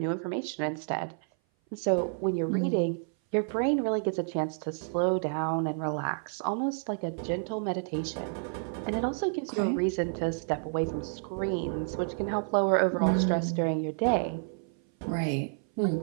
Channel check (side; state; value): left; silent; 57 dB below the other